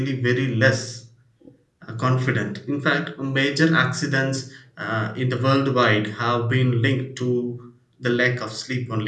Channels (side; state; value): both; identical; correlation 1.00